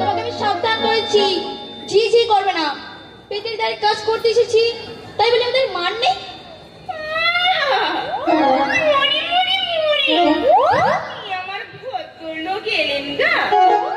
আমি সাবধান করেছি, ঝি ঝি করবে না। পেটের দাঁড়িয়ে কাজ করতে এসেছি, তাই বলে আমাদের মান নেই। মরি মরি মরি, কি আমার ভদ্রলোক এলেন গা,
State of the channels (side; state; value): both; identical; correlation 1.00